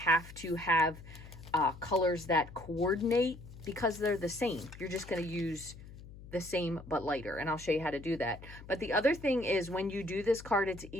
to have colors that coordinate because they're the same. You're just going to use the same but lighter, and I'll show you how to do that. But the other thing is when you do this card, it's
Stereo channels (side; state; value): left; noise; hum, 16 dB below the sound